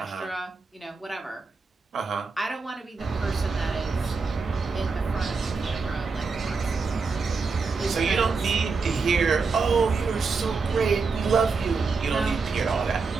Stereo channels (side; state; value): left; quieter; 4.6 dB